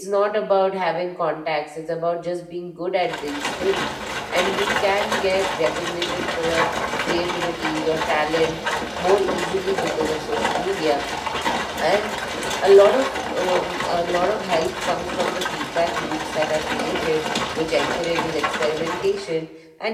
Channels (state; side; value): identical; both; correlation 1.00